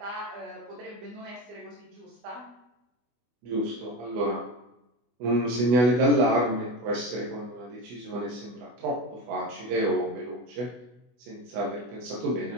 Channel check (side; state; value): left; late; 24 ms